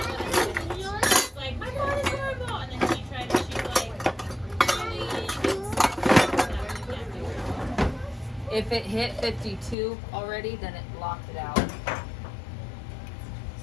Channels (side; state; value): right; drops out; at 9.8 s